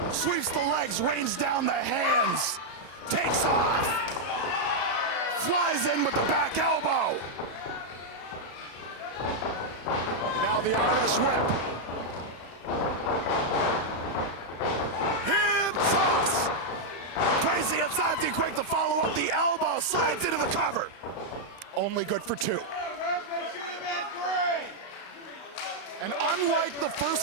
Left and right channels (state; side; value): late; right; 35 ms